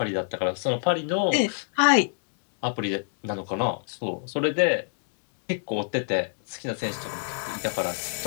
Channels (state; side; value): silent; right; digital silence